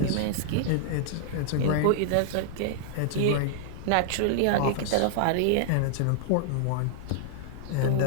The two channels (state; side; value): different; both; correlation -0.01